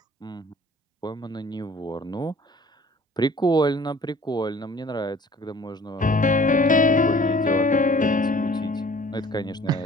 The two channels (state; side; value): normal; both; correlation 0.51